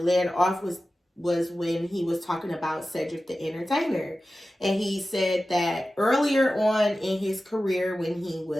led off was when he was talking about Cedric the Entertainer. And he said that earlier on in his career, when he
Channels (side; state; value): both; normal; correlation 0.94